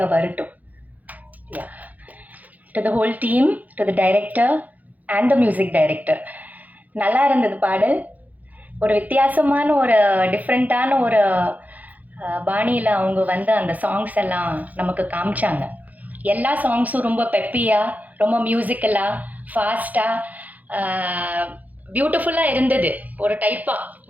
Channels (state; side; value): late; left; 0.079 ms